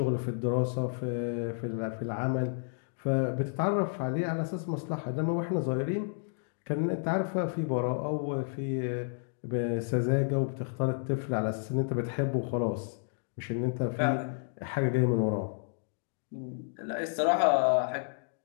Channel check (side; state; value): right; silent; digital silence